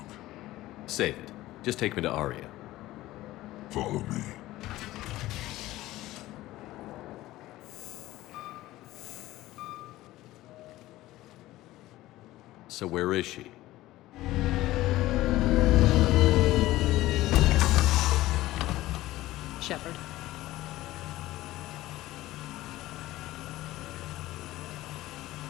Save it. Just take me to Aria. Follow me. So where is she? Shepard.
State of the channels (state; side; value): quieter; right; 16.6 dB